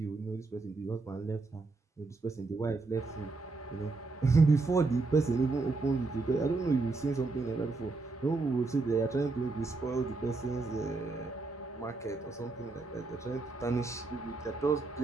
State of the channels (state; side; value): quieter; left; 3.7 dB